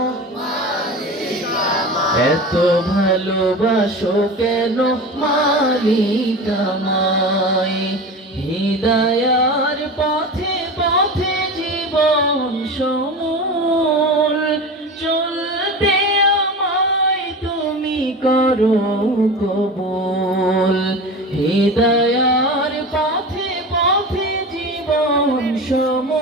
এত ভালোবাসো কেন মালিক আমায়। হিদায়ার পথে পথে জীবন সমূল চলতে আমায় তুমি করো কবুল, হিদায়ার পথে পথে জীবন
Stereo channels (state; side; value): normal; both; correlation 0.30